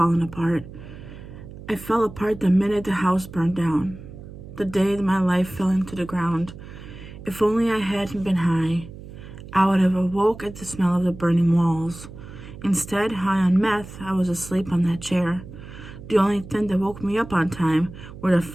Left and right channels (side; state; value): right; noise; hum, 15 dB below the sound